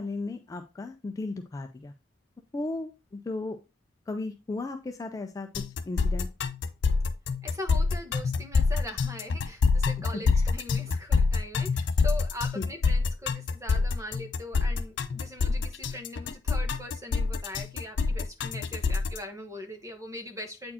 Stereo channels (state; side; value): quieter; right; 3.8 dB